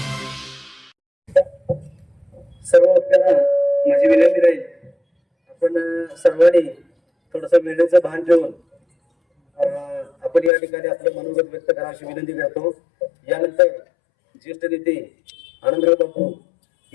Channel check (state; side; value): drops out; right; at 10.5 s